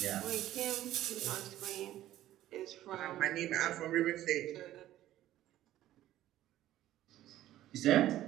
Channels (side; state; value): left; quieter; 13.8 dB